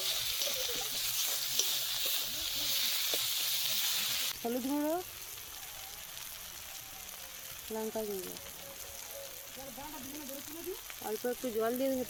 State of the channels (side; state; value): both; identical; correlation 1.00